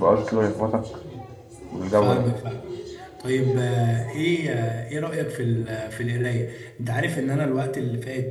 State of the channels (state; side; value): identical; both; correlation 1.00